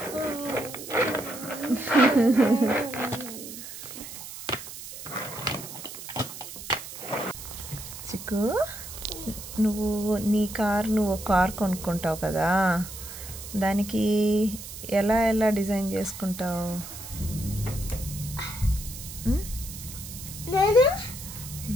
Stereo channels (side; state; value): right; noise; hiss, 11 dB below the sound